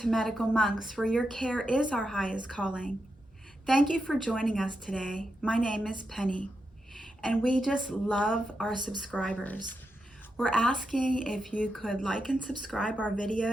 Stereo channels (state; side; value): normal; both; correlation 0.86